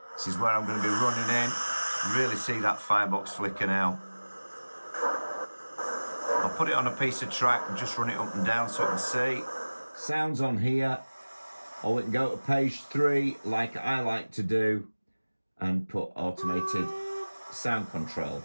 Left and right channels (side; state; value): both; inverted; correlation -1.00